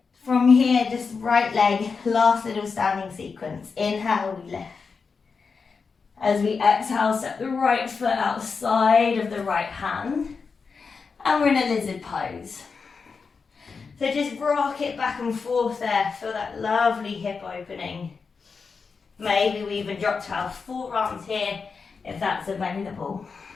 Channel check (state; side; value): quieter; right; 5.1 dB